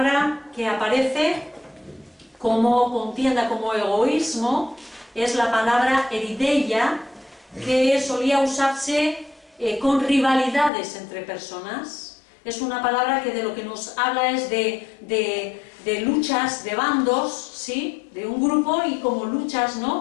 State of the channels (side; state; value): right; drops out; at 10.7 s